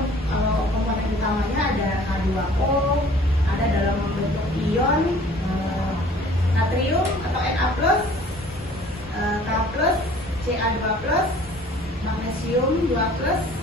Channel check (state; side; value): normal; both; correlation 0.51